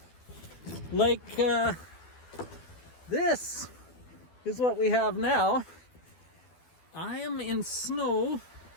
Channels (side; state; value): right; late; 12 ms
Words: Like, this is what we have now. I am in snow